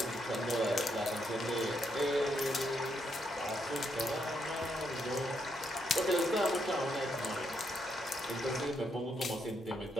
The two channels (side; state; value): both; normal; correlation 0.77